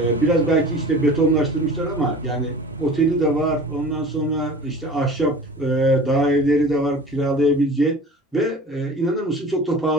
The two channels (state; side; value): normal; both; correlation 0.40